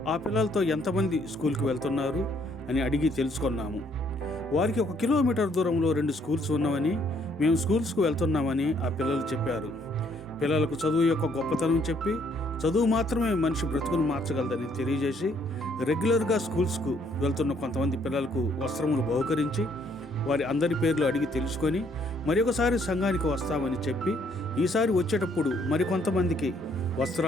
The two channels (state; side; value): normal; both; correlation 0.67